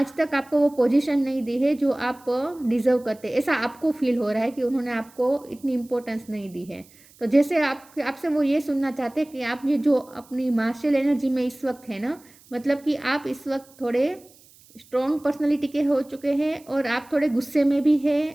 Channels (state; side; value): noise; right; hiss, 27 dB below the sound